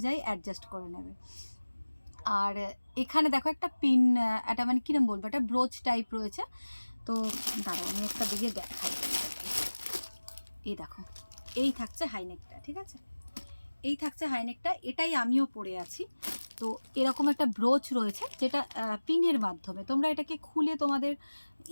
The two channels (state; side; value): inverted; both; correlation -1.00